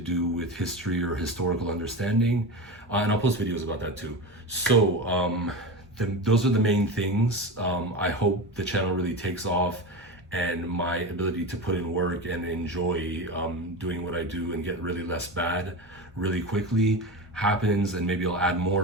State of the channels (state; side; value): normal; both; correlation 0.24